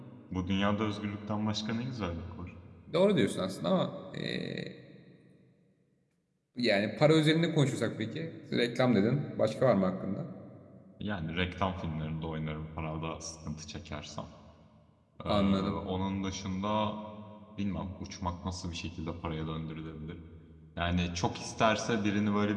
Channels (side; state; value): both; identical; correlation 1.00